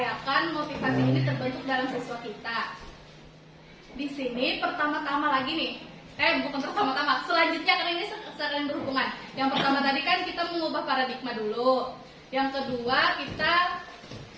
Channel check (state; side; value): identical; both; correlation 1.00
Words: motivasi ini terbentuk dalam siswa kita. Di sini pertama-tama lagi nih, bukan pertama-tama, selanjutnya karena ini saling berhubungan. Yang pertama tadi kan kita mengubah paradigma dulu. Yang kedua kita